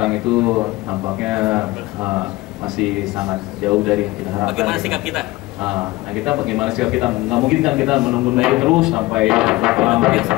itu tampaknya masih sangat jauh dari yang kita harapkan. Bagaimana sikap kita? Nah kita bagaimana sikap kita? Nggak mungkin kan kita menunggu terus sampai lama. Yang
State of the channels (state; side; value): quieter; right; 20.1 dB